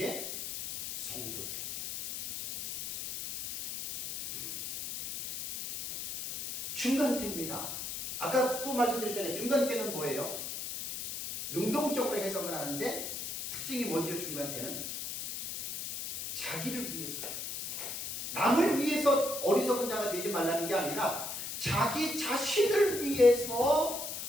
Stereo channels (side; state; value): left; noise; hiss, 6 dB below the sound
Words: 성도들에게. 중간대입니다. 아까 또 말씀드렸잖아요. 중간대는 뭐예요? 능동적으로 해석을 하는데 특징이 뭐죠? 중간대는 자기를 위해서, 남을 위해서 어리석은 자가 되지 말라는 게 아니라 자기 자신을 위해서